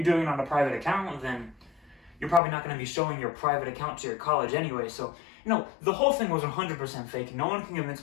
doing it on a private account, then you're probably not going to be showing your private account to your college anyway. So, the whole thing was 100% fake. No one can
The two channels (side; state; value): right; drops out; at 2.4 s